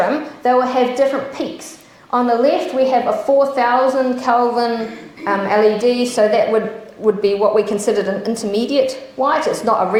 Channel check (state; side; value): identical; both; correlation 1.00